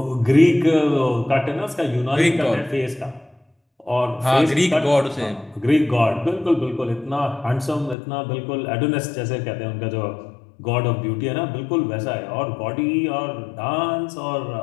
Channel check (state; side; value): drops out; right; at 8.0 s